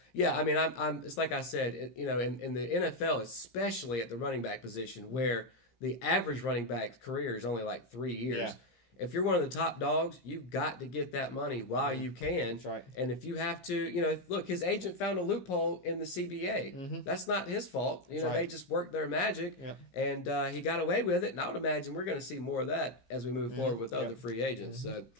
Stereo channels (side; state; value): right; late; 15 ms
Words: yeah, I mean, I'm it's like I said, in the NFL, especially at the running back position, where the average running back's career is only like 3 years. Yeah. If you're one of the top dogs, you've got to get that money while you can. That's right. And if you have to, look, his agent found a loophole in the CBA. That's not his fault. They just worked their magic, and he got away with it. And I would imagine we're going to see more of that as we move forward with other free agents. So,